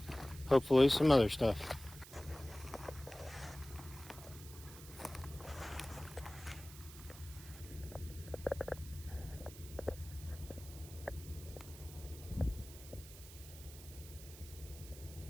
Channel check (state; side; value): noise; right; hiss, 16 dB below the sound